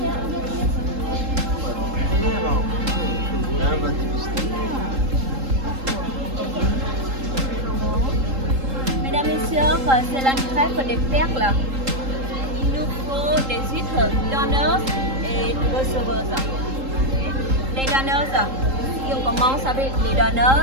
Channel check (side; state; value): left; late; 3.8 ms